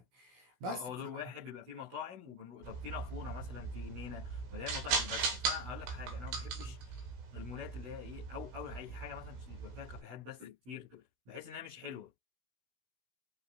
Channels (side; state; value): left; late; 16 ms